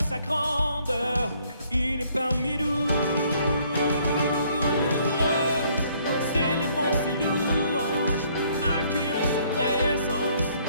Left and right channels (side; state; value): both; inverted; correlation -0.64